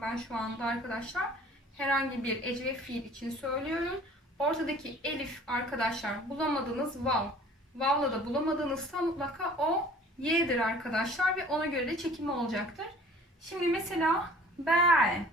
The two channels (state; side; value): normal; both; correlation 0.49